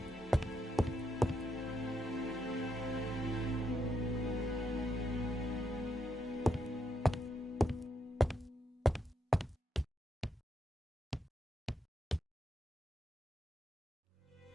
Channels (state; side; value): normal; both; correlation 0.80